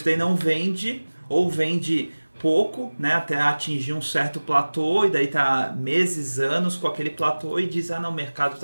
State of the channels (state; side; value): inverted; both; correlation -1.00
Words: daí não vende, ou vende pouco, né, até atingir um certo platô, e daí tá meses, anos com aquele platô e diz, não, o mercado